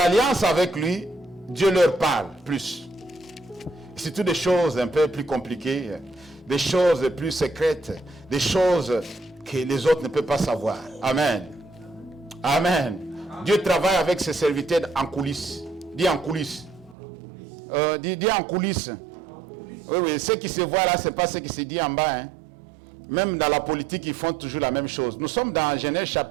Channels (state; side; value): drops out; left; at 16.9 s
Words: avec lui, Dieu leur parle plus. C'est toutes des choses un peu plus compliquées, des choses plus secrètes, des choses que les autres ne peuvent pas savoir. Amen. Amen. Dieu travaille avec ses serviteurs en coulisses. Dis en coulisses. Dis en coulisses. Oui, ce qui se voit là, ce n'est pas ce qui se dit en bas. Hein. Même dans la politique, ils font toujours la même chose. Nous sommes dans Genèse